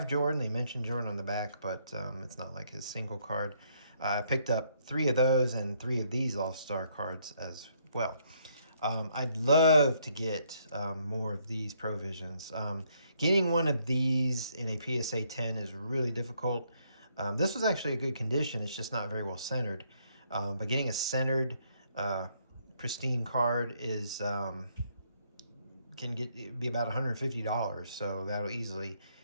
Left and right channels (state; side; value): inverted; both; correlation -0.71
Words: Jordan. They mentioned Jordan on the back, but it's not like his single card. I picked up 3 of those and 3 of these All-Star cards as well. I'd love to get more of these Provisions. Getting 1 of these in a PSA 10 is really difficult. This was actually a good condition. It's just not very well centered. But getting a centered, pristine card is can be about $150. So that'll easily